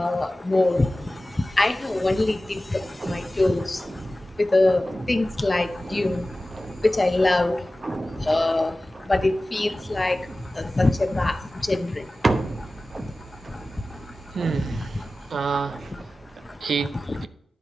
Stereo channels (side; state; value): both; normal; correlation 0.96